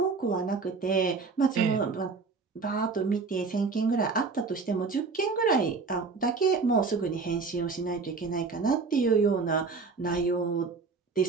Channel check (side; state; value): left; quieter; 4.5 dB